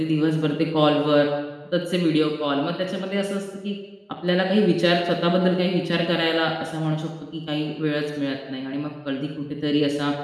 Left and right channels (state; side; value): identical; both; correlation 1.00